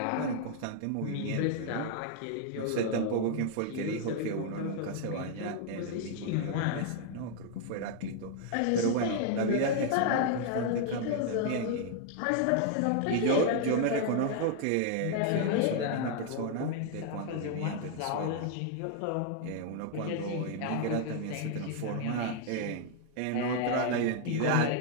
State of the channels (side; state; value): both; different; correlation 0.00